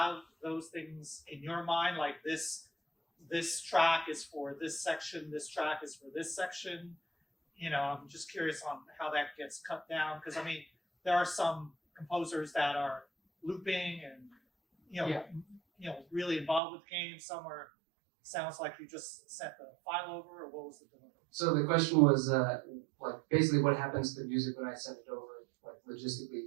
those things in your mind, like this track is for this section, this track is for this section? I'm just curious on how that gets cut down, because I mean, there are some composers that are looping and really involved with the game. Some sounds like you just sent the file over, or what was the delivery? So the question was like basically what happens to the music when I send it over, like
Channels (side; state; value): left; drops out; at 16.6 s